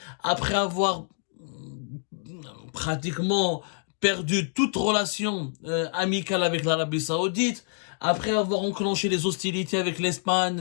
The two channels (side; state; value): right; silent; digital silence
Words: après avoir pratiquement perdu toute relation amicale avec l'Arabie Saoudite, après avoir enclenché les hostilités avec l'Espagne,